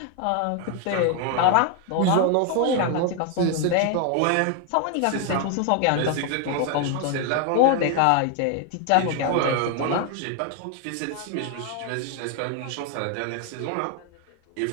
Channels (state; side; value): different; both; correlation 0.00